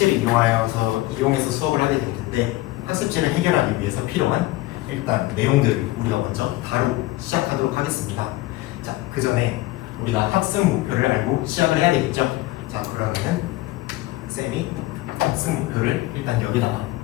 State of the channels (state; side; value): quieter; right; 18.3 dB